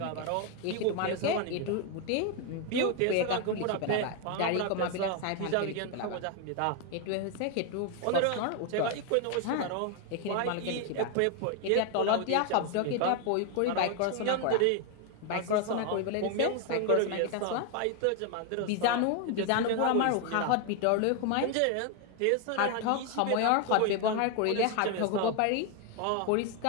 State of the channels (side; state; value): both; different; correlation 0.01